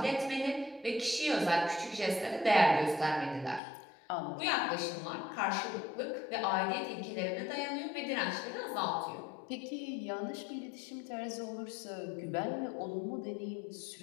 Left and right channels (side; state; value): right; drops out; at 3.6 s